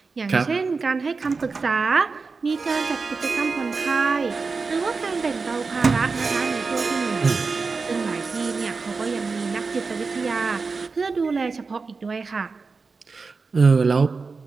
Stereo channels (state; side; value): quieter; left; 4.4 dB